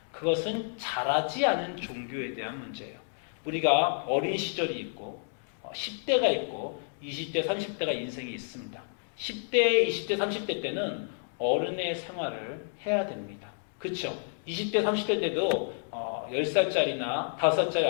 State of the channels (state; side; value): silent; right; digital silence